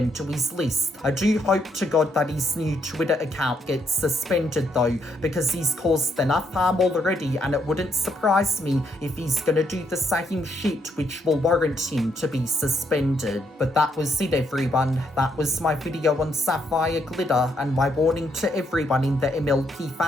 to his list. I do hope to God that his new Twitter account gets suspended though, because he's caused enough harm already, and it wouldn't surprise me if he's gonna do the same shit which will warrant him to be suspended. But that was it, everyone. That was my video on Sapphire Glitter and my warning to everyone in the MLP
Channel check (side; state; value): both; normal; correlation 0.75